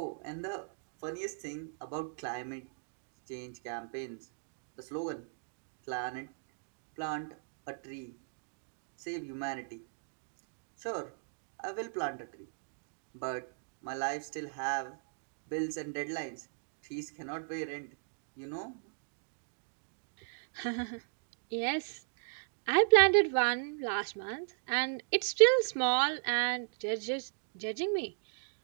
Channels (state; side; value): silent; left; digital silence